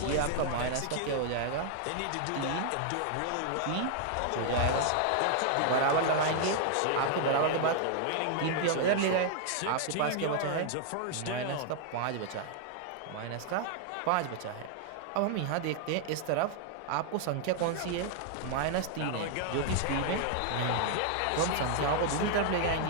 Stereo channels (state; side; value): different; both; correlation 0.00